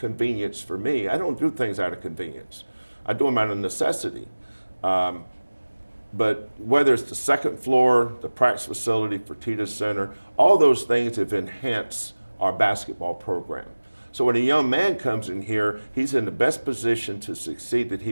for me. I don't do things out of convenience. I do them out of necessity. But whether it's the second floor, the practice facility, Fertitta Center, all those things have enhanced our basketball program. So when a young man comes in here, he's in the best position to succeed that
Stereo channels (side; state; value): both; inverted; correlation -1.00